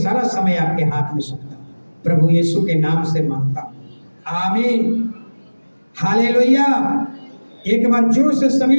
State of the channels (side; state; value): both; inverted; correlation -1.00